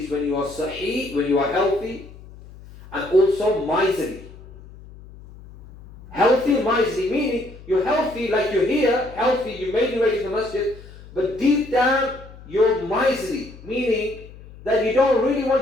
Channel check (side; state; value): left; noise; hum, 19 dB below the sound